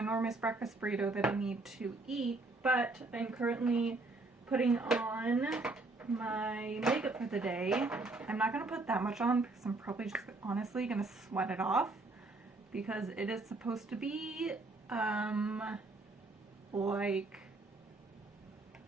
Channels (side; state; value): left; quieter; 3.2 dB